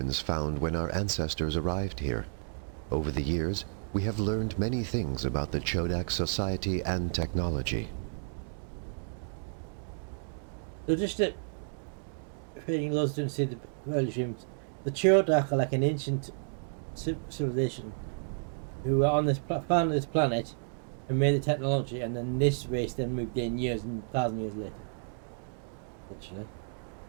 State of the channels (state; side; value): silent; left; digital silence